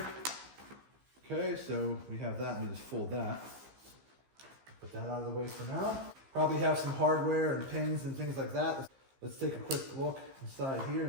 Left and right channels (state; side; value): late; left; 15 ms